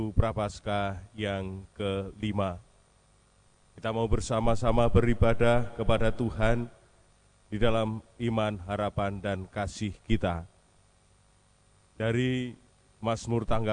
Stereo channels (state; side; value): identical; both; correlation 1.00